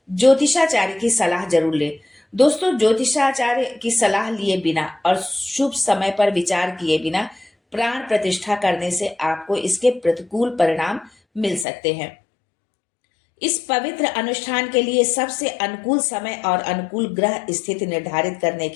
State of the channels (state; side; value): drops out; right; at 11.7 s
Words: ज्योतिषाचार्य की सलाह जरूर लें। दोस्तों, ज्योतिषाचार्य की सलाह लिए बिना और शुभ समय पर विचार किए बिना प्राण प्रतिष्ठा करने से आपको इसके प्रतिकूल परिणाम मिल सकते हैं। इस पवित्र अनुष्ठान के लिए सबसे अनुकूल समय और अनुकूल ग्रह स्थिति निर्धारित करने